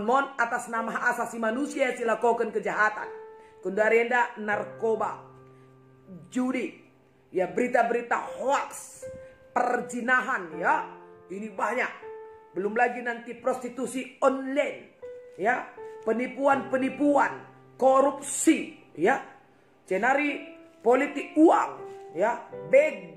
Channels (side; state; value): both; identical; correlation 1.00